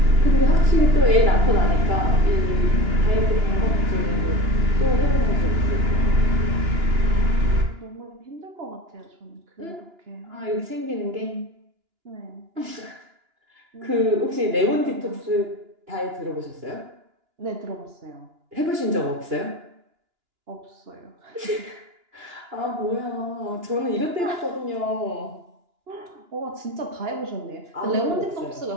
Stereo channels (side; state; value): left; late; 2.9 ms